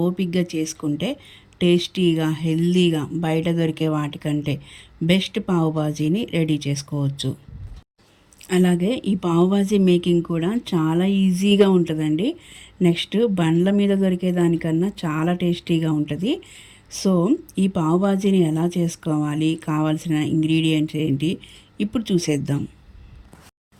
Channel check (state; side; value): identical; both; correlation 1.00